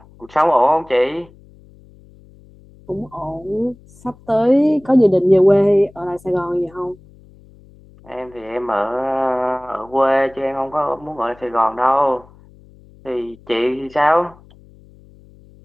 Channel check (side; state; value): left; noise; hum, 25 dB below the sound